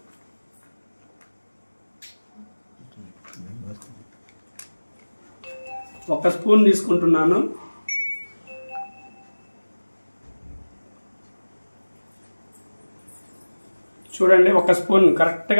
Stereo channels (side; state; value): both; inverted; correlation -1.00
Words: ఒక స్పూన్ తీసుకుంటున్నాను. చూడండి, ఒక స్పూన్,